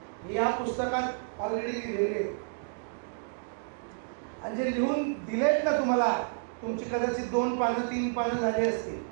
या पुस्तकात ऑलरेडी लिहिलेले आणि जे लिहून दिलेत ना तुम्हाला, तुमची कदाचित 2 पानं 3 पानं झाली असतील.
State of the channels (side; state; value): left; silent; digital silence